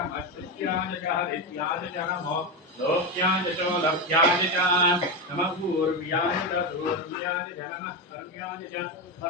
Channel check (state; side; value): normal; both; correlation 0.13